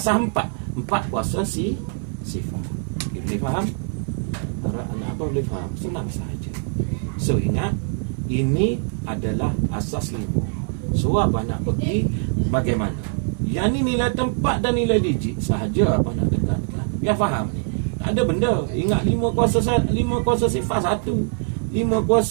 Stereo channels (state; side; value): silent; left; 58 dB below the other